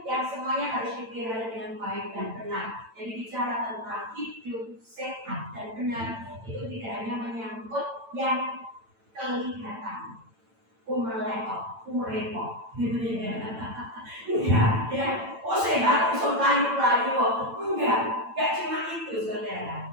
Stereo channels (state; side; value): late; left; 8.9 ms